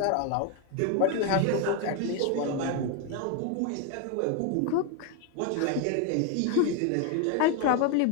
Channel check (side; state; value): both; different; correlation 0.01